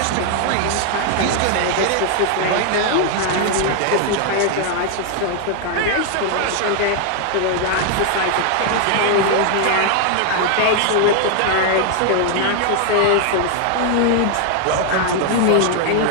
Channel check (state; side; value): different; both; correlation 0.00